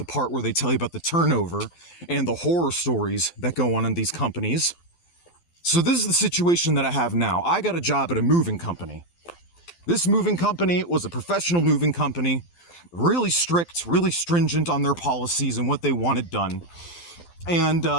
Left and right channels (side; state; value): right; late; 12 ms